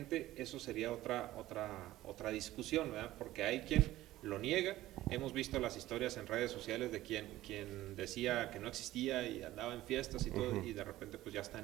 Eso sería otra discusión, ¿verdad? Porque hay quien lo niega. Hemos visto las historias en redes sociales de quien decía que no existía y andaba en fiestas y todo, y de repente pues ya está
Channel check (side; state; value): left; quieter; 15.7 dB